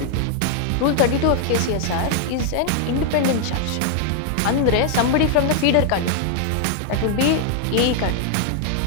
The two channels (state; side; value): different; both; correlation 0.00